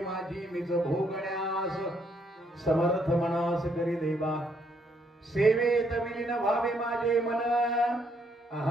मिज भोगण्यास समर्थ मनास करी देवा. सेवेत विलीन व्हावे माझे मन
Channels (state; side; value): normal; both; correlation 0.72